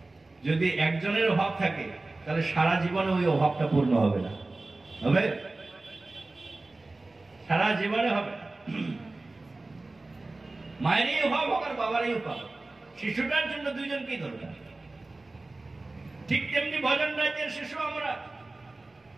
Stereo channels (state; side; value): quieter; left; 3.1 dB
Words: যদি একজনের অভাব থাকে, তাহলে সারা জীবনে ওই অভাবটা পূর্ণ হবে না। হবে? সারা জীবনে হবে। মায়েরই অভাব হোক আর বাবারই অভাব, শিশুটার জন্য দুইজনকেই দরকার। ঠিক তেমনি ভজন রাজ্যের শিশু আমরা,